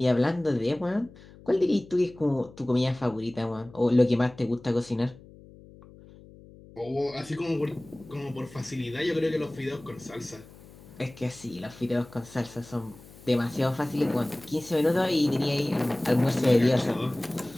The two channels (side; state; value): left; noise; hum, 21 dB below the sound